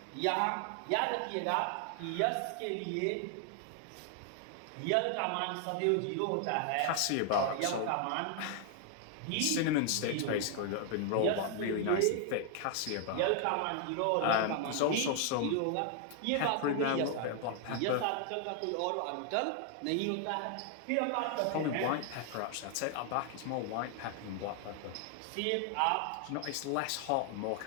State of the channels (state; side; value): different; both; correlation 0.00